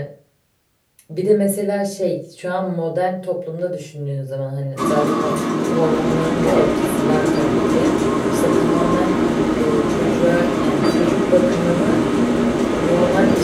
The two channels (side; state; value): both; identical; correlation 1.00